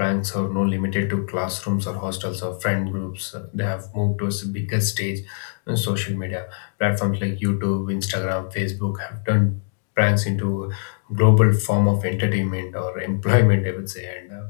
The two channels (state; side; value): silent; right; digital silence